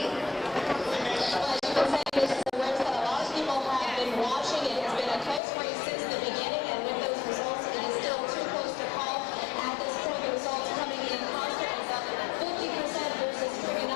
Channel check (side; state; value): right; drops out; at 5.4 s